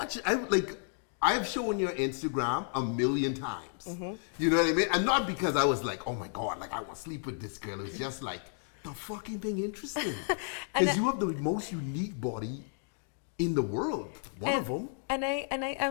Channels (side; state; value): right; silent; 56 dB below the other